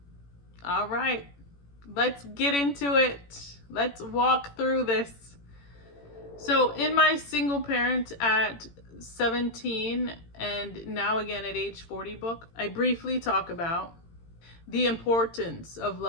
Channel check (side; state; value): right; late; 18 ms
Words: All right, let's get into it. Let's walk through this. So in my single parent at 17 and now again at age 40 book, I briefly talk about the importance of